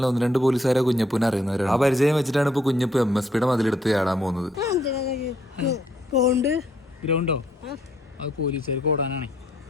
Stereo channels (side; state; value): both; normal; correlation 0.69